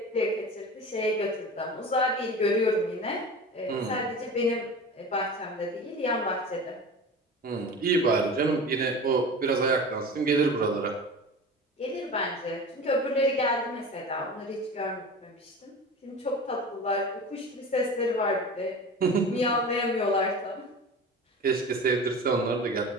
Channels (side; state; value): both; normal; correlation 0.34